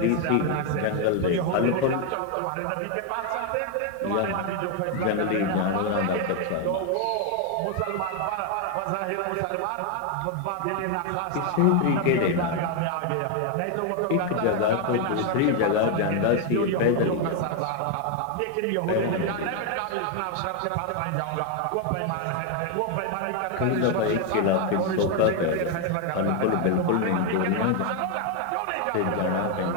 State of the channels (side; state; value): both; different; correlation 0.01